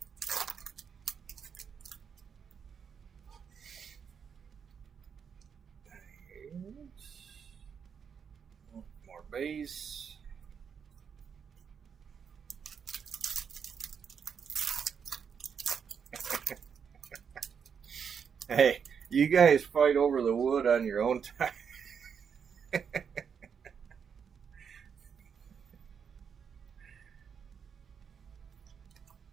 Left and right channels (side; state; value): left; quieter; 6.9 dB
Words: More base. Hey, you guys fight over the wood on your own time.